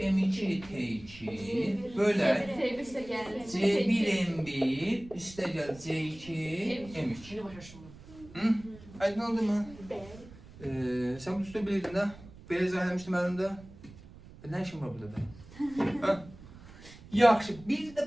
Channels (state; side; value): noise; right; rumble, 19 dB below the sound